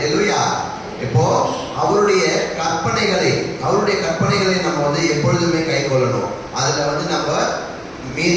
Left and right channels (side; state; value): both; identical; correlation 1.00